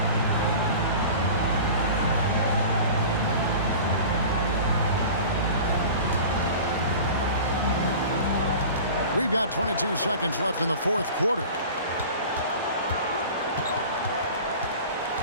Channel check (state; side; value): inverted; both; correlation -0.38